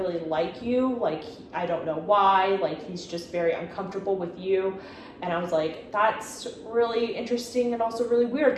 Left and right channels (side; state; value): both; identical; correlation 1.00